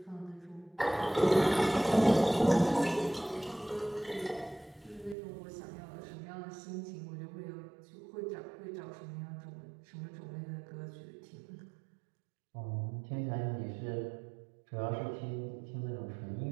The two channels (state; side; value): drops out; left; at 5.2 s